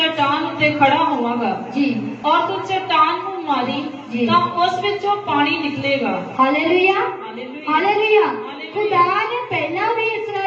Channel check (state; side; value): identical; both; correlation 1.00